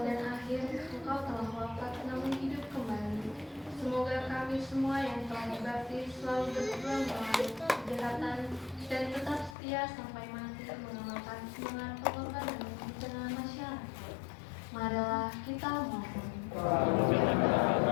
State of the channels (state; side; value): drops out; right; at 9.6 s